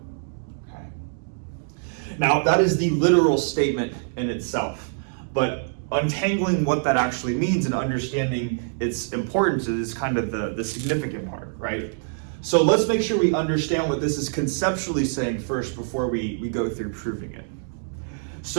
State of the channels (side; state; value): left; silent; digital silence